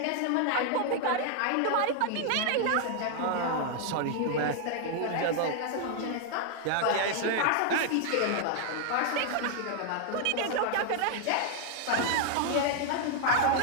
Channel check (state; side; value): different; both; correlation 0.00